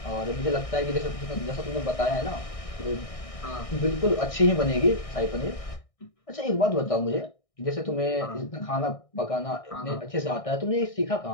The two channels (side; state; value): right; late; 1.6 ms